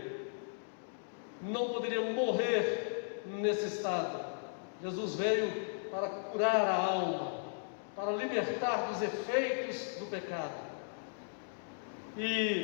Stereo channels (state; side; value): silent; right; digital silence